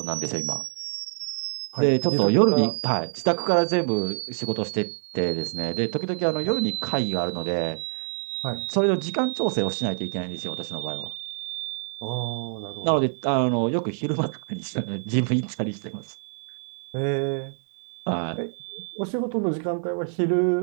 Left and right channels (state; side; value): silent; left; digital silence